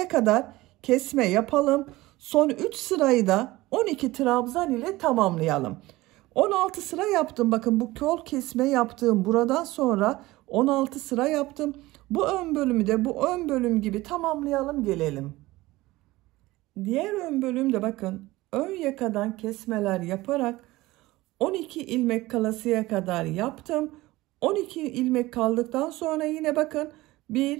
kadar kesme yapalım. Son 3 sırayı da 12 trabzan ile tamamlayalım. 16 sıra yaptım. Bakın bu kol kesme yaptığım buradan sonra 16 sıra yaptım. Bu ön bölümü de bu ön bölüm gibi tamamlayalım gelelim. Diğer ön bölümde bakın ön yakadan kesmeler yaparak 12 ilmek kalasıya kadar yaptım. 12 ilmek kaldıktan sonra yine bakın 1,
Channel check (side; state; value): left; quieter; 18.9 dB